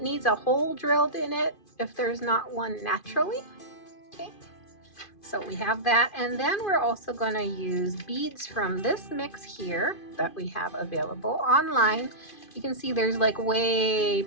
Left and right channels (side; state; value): right; late; 2.5 ms